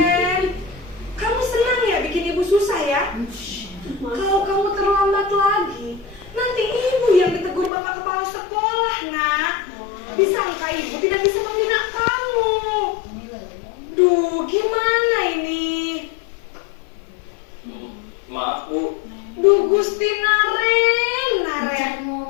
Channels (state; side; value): drops out; right; at 7.7 s